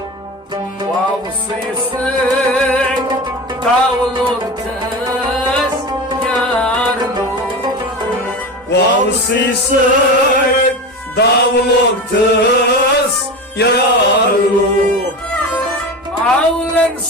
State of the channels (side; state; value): both; normal; correlation 0.26